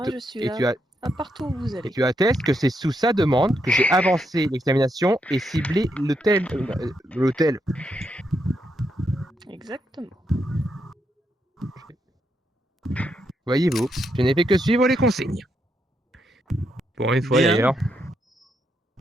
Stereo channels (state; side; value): normal; both; correlation 0.80